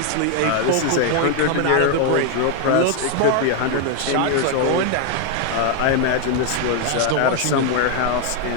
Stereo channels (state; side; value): different; both; correlation 0.00